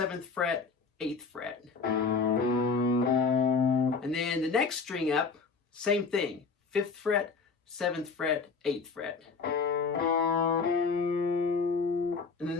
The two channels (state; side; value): quieter; right; 4.9 dB